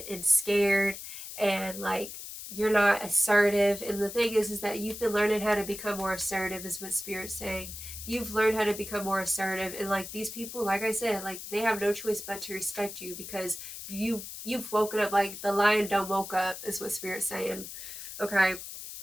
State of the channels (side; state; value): left; noise; hiss, 10 dB below the sound